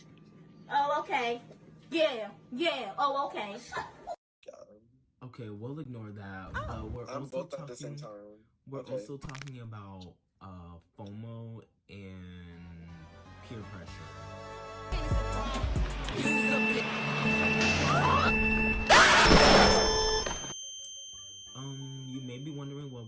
Oh, okay. Yeah. Oh, okay. Okay, we'll ignore that. We're I'm also both talking, at the same time. We're also talking about Fomo and peer pressure. You may be wondering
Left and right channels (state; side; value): identical; both; correlation 1.00